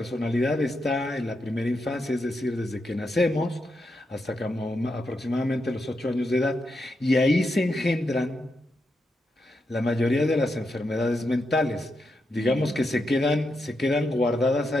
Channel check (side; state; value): both; normal; correlation 0.84